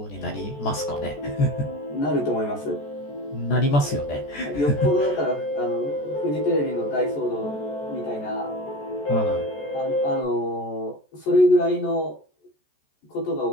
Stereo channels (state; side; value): late; right; 14 ms